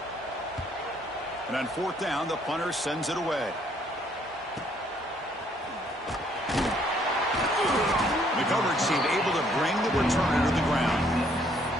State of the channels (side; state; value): both; normal; correlation 0.66